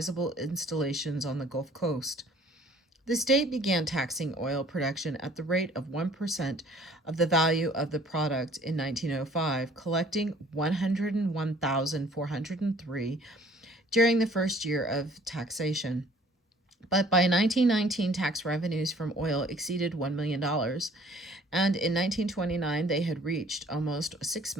installations on the Gulf Coast. The state began taxing oil production at the rate of 1% of the value of the product in 1905, collecting $101,403 during the first year of taxation. But by 1919, tax revenues from oil exceeded $1 million, and in 1929, they had reached almost $6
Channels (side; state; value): both; normal; correlation 0.55